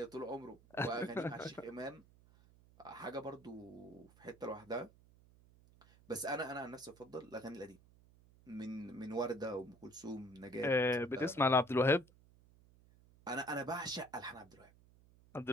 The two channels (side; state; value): right; noise; hum, 26 dB below the sound